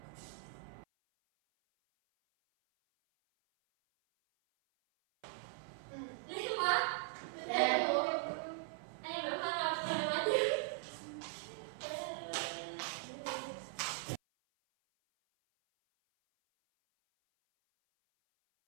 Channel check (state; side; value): silent; left; 51 dB below the other